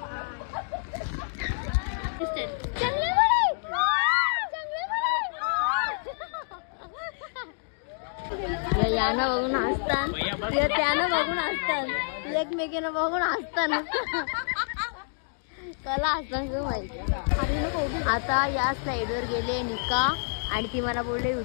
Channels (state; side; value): silent; right; digital silence